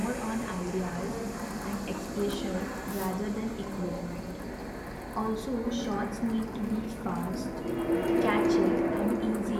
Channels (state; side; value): identical; both; correlation 1.00